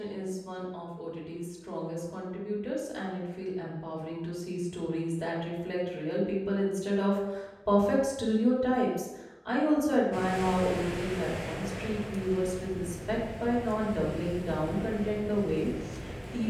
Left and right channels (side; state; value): both; identical; correlation 1.00